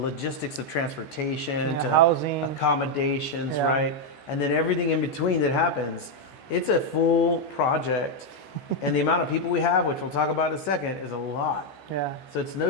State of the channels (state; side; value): late; right; 14 ms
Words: of transportation to housing, accommodations, right? And then everything in between that happens. It's a full project. And the amount of people we have, which we'll talk about in a second, is a lot. Yeah. So it's no